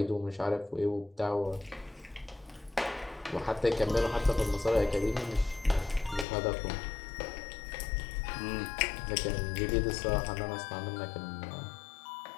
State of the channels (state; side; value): drops out; right; at 6.2 s